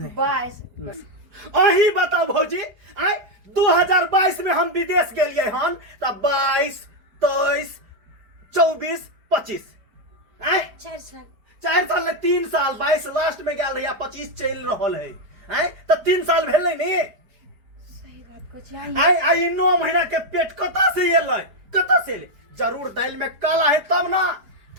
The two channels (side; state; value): left; late; 4.7 ms